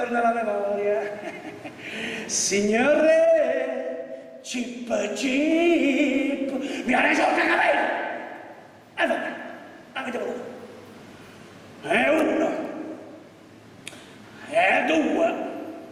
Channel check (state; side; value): identical; both; correlation 1.00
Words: la memoria. Signore, Chip, mi ha dai soldi, capito? E vabbè, avete voluto. E uno, e due,